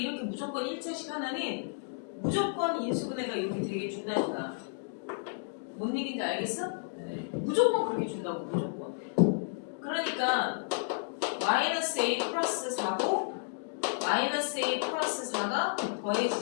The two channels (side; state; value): right; silent; digital silence